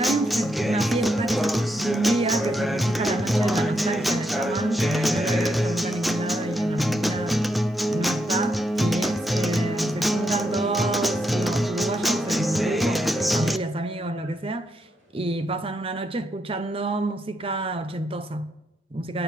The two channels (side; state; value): both; normal; correlation 0.80